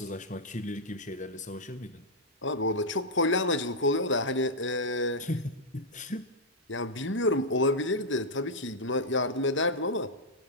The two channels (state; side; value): normal; both; correlation -0.07